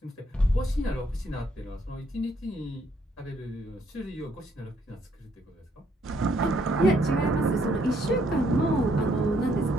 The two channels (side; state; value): both; normal; correlation 0.70